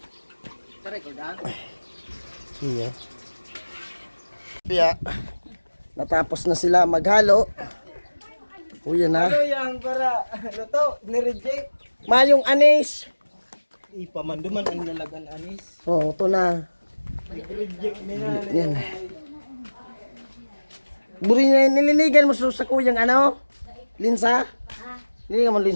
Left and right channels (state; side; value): inverted; both; correlation -1.00